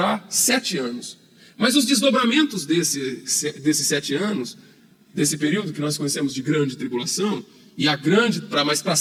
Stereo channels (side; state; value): both; identical; correlation 1.00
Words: 7 anos. Mas os desdobramentos desses 7 anos, desse período que nós conhecemos de grande tribulação, e mas para